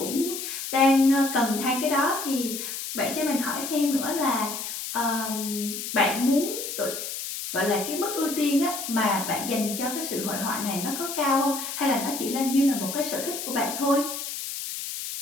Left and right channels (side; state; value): left; noise; hiss, 6 dB below the sound